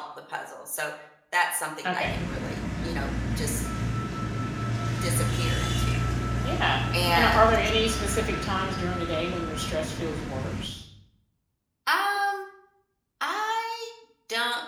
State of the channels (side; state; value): both; identical; correlation 1.00